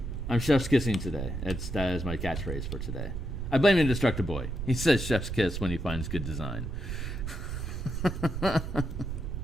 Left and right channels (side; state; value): right; noise; rumble, 4 dB below the sound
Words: I'm chef's kissing today. That is my catchphrase for today. I blame Indestructible Boy. He says chef's kiss when he finds good design.